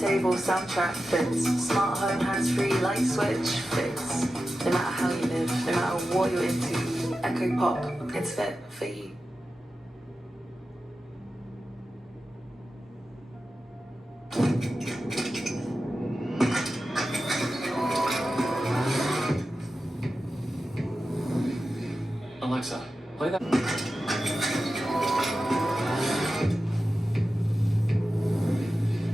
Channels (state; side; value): normal; both; correlation 0.92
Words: soundtrack fits. Smart home, hands-free, light switch fits. No matter how you live, no matter what you're into, Echo Pop, it's fit for you. Alexa, play that.